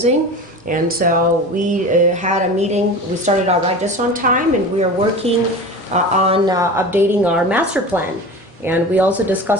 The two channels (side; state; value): both; normal; correlation 0.32